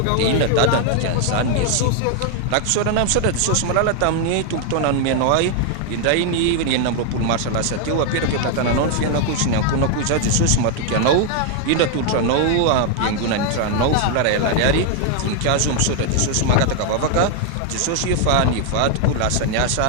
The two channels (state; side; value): different; both; correlation 0.00